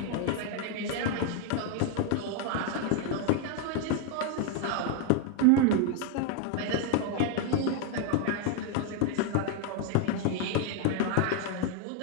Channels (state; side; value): different; both; correlation 0.01